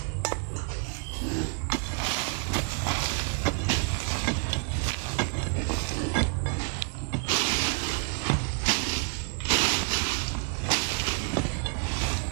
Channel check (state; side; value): quieter; left; 33.0 dB